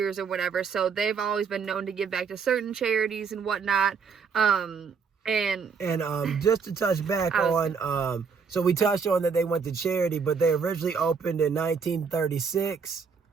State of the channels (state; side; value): quieter; left; 5.8 dB